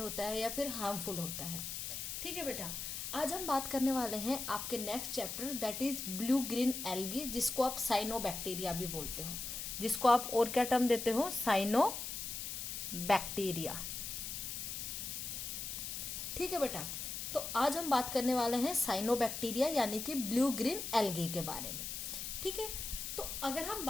है या फिर हार्मफुल होता है। ठीक है बेटा, आज हम बात करने वाले हैं आपके next chapter that is blue green algae, जिसको आप साइनोबैक्टीरिया भी बोलते हो, जिसको आप और क्या टर्म देते हो, साइनोबैक्टीरिया। ठीक है बेटा, तो आज हम बात करने वाले हैं साइनोबैक्टीरिया यानी कि ब्लू ग्रीन एल्गी के बारे में। ठीक है, तो अगर हम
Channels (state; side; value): noise; left; hiss, 5 dB below the sound